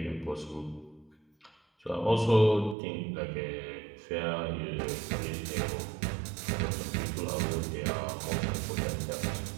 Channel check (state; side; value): drops out; left; at 2.8 s